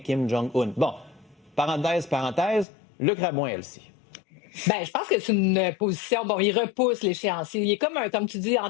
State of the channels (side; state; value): right; drops out; at 2.7 s